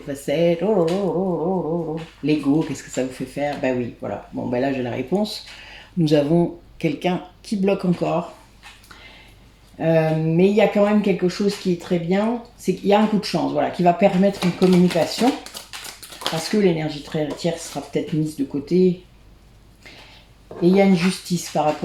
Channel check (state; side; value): identical; both; correlation 1.00